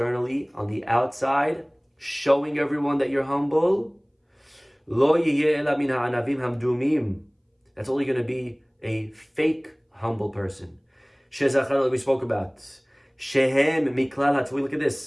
on the outside, showing everyone that you're humble, that's only going to be a fake humble person. We spoke about. Look at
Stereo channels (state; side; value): identical; both; correlation 1.00